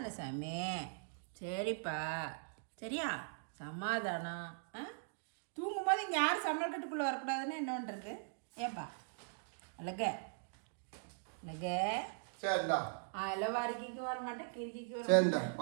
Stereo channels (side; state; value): left; silent; digital silence